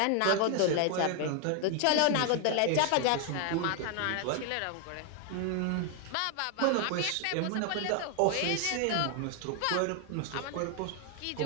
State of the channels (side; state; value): both; different; correlation 0.00